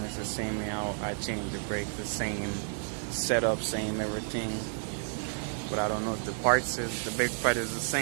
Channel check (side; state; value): left; silent; 57 dB below the other